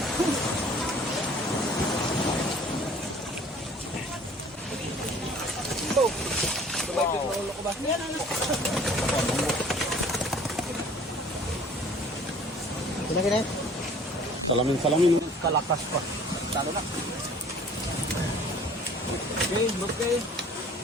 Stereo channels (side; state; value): both; normal; correlation 0.52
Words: Kina. Salamin. Kalakas pa. Talo na. Okay, okay.